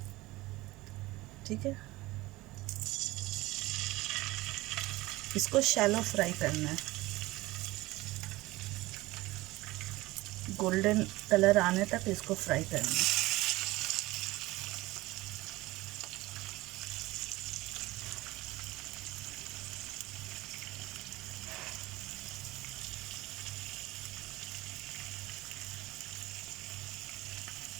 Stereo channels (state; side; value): quieter; left; 19.5 dB